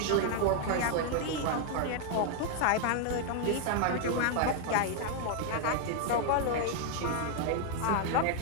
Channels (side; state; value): both; different; correlation 0.00